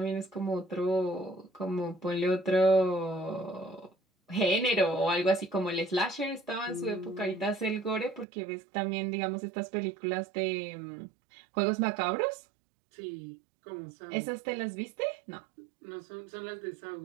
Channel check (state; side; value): drops out; left; at 8.2 s